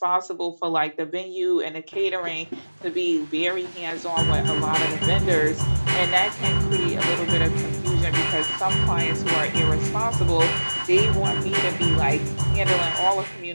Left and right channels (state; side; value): inverted; both; correlation -1.00